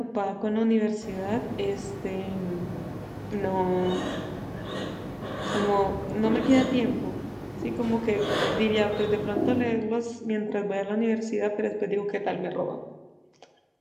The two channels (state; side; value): identical; both; correlation 1.00